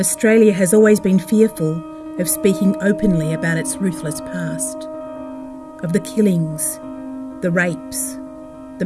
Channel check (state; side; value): identical; both; correlation 1.00